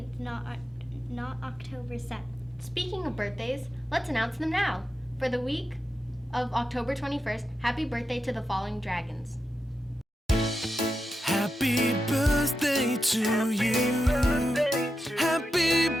not October 7th. Speaking of birthdays, let's announce them now. For the week of October 21st, happy birthday to the following dragons. Happy birthday to you. Happy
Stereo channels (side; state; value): both; normal; correlation 0.88